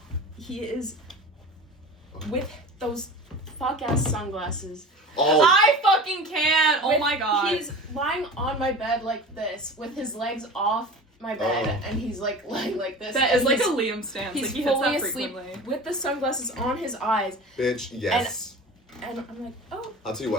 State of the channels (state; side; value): normal; both; correlation 0.36